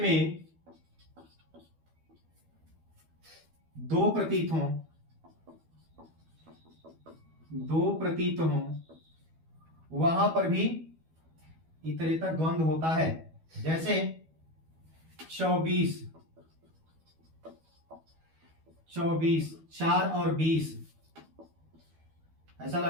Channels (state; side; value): late; left; 12 ms